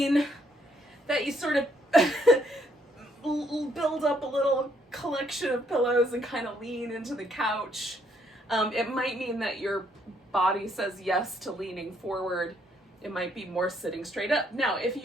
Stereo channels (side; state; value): both; normal; correlation 0.70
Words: that you sort of build up a little collection of pillows and kind of lean into the couch. It might mean that your body says yes to leaning forward. It might be more sitting straight up. Now,